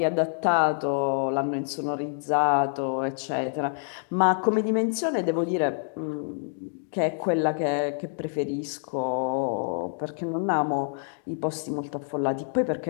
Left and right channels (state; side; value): silent; right; digital silence